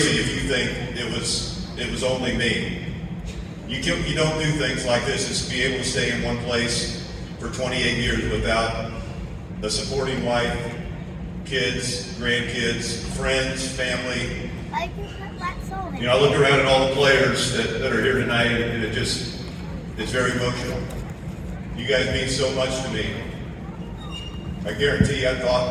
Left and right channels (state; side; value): identical; both; correlation 1.00